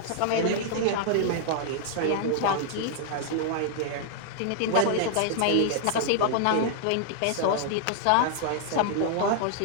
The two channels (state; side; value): different; both; correlation -0.01